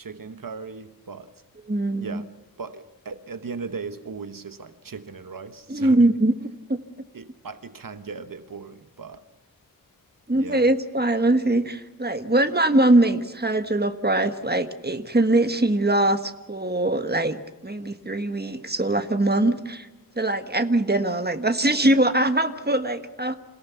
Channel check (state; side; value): normal; both; correlation 0.47